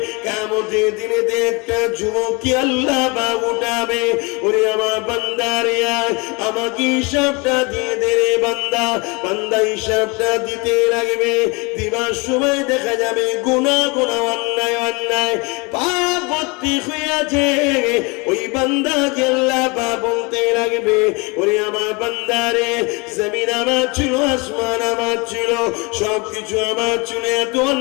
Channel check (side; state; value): right; quieter; 28.5 dB